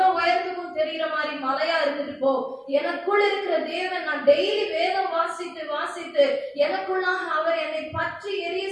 உயரத்துக்கும் தெரிகிற மாதிரி மலையா இருந்துட்டு போ, எனக்குள் இருக்கிற தேவன், நான் டெய்லி வேதம் வாசித்து எனக்குள்ளாக அவர் என்னை பற்றி எரிய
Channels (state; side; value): identical; both; correlation 1.00